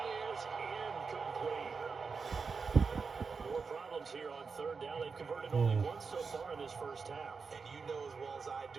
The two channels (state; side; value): quieter; left; 5.1 dB